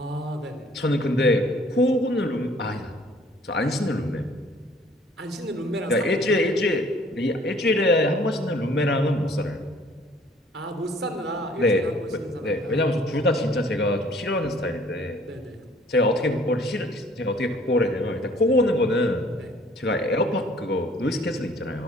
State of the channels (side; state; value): both; normal; correlation 0.56